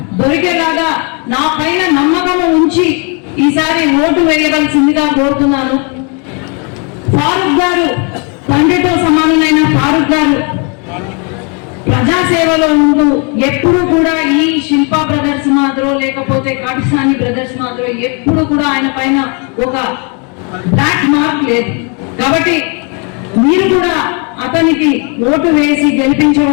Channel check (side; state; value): right; quieter; 35.3 dB